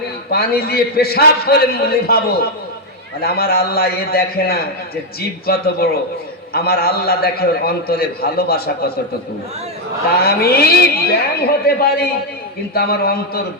পানি দিয়ে পেশাব করে নিভাবো। মানে আমার আল্লাহ এ দেখে না যে জীব কত বড়, আমার আল্লাহ দেখে ওর অন্তরে ভালোবাসা কতটুকু। তা আমি ব্যাং হতে পারি, কিন্তু আমার অন্তর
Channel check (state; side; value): normal; both; correlation 0.02